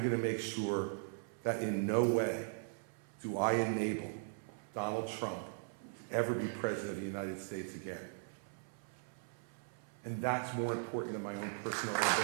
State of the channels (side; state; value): left; silent; 52 dB below the other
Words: to make sure that in no way do I enable Donald Trump to ever be president of the United States again. And that's more important than my own personal